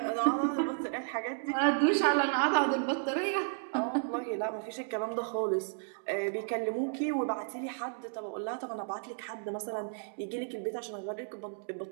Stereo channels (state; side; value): silent; left; digital silence